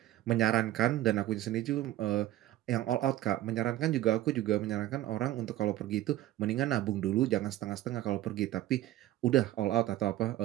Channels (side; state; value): left; quieter; 14.1 dB